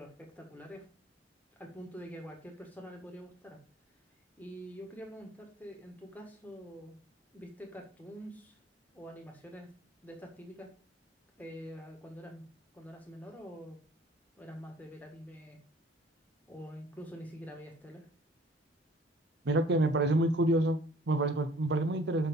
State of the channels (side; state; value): both; normal; correlation 0.54